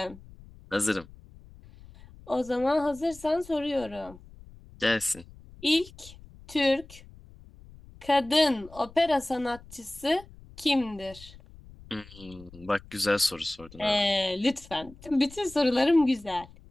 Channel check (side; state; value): left; noise; rumble, 21 dB below the sound